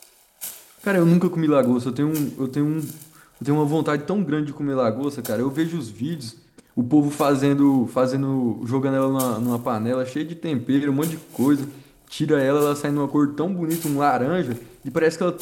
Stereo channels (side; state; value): both; identical; correlation 1.00